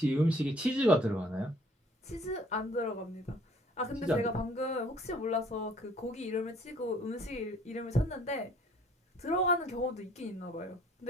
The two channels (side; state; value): both; normal; correlation 0.57